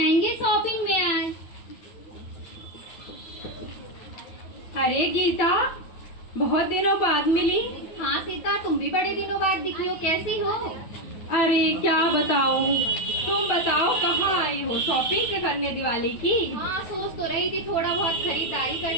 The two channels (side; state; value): right; late; 9.3 ms